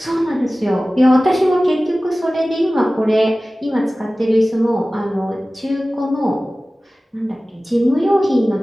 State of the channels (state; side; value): normal; both; correlation 0.97